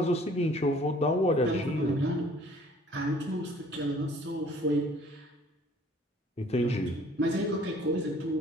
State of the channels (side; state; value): both; normal; correlation 0.55